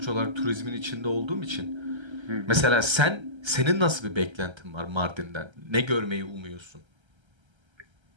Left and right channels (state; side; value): late; left; 1.3 ms